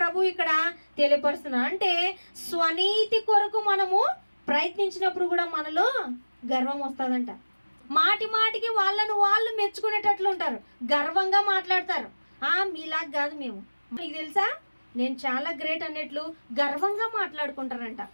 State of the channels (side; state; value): both; inverted; correlation -1.00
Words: ఇక్కడ తెలియపరుస్తున్నారు. అంటే స్వనీతి కొరకు మనము ప్రయత్నించినప్పుడు కూడా మనలో గర్వం వస్తుందంట. మాటి మాటికి వాళ్ళను వాళ్ళు మెచ్చుకునేటట్లు ఉంటారు, గర్వంగా మాట్లాడతారు. మీలాగా కాదు మేము, మీకు తెలుసా నేను చాలా గ్రేట్ అన్నట్లు గర్వంగా మాట్లాడుకుంటారంట.